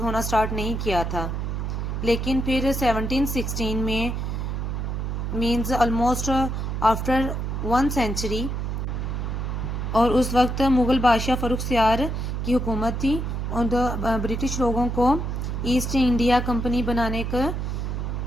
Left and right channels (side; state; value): right; noise; hum, 2 dB below the sound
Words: ہونا سٹارٹ نہیں کیا تھا. لیکن پھر 1716 میں مینز آلموسٹ آفٹر 1 century، اور اس وقت مغل بادشاہ فروخ سیار کی حکومت تھی اور برٹش لوگوں کو ایسٹ انڈیا کمپنی بنانے کا